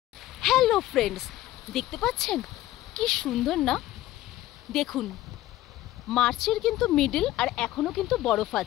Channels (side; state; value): right; quieter; 15.3 dB